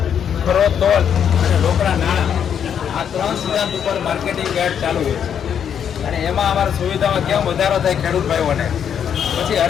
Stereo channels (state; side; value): quieter; right; 8.3 dB